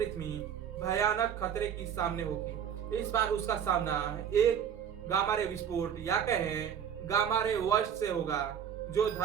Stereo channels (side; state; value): left; quieter; 8.5 dB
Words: भयानक खतरे की सामने होगी। इस बार उसका सामना एक गामा रे विस्फोट या कहें गामा रे वर्स्ट से होगा, जो